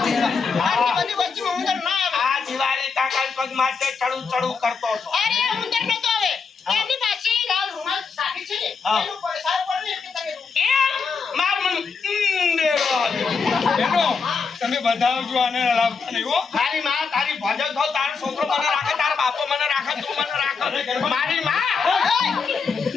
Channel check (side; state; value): right; quieter; 5.2 dB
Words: આટલી બધી વસ્તીમાં ઉંદર ના આવે. આ દિવાળી કાકા પગ માટે ચડું ચડું કરતો હતો. અરે ઉંદર નતો આવે. એમની પાસે લાલ રૂમાલ સાકી છે ને. હા. એનું પૈસા પડે ને એટલે તમે એમ માર મન દેવો આયો. બેનો તમે બતાવજો આને લાવતા નહીં હો. તારી માં તારી ભજન થો, તારો છોકરો મને રાખે, તારો બાપો મને રાખે, તું મને રાખે. મારી માં.